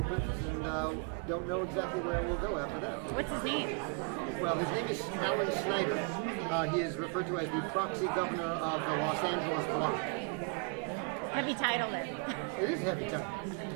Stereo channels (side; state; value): left; quieter; 37.1 dB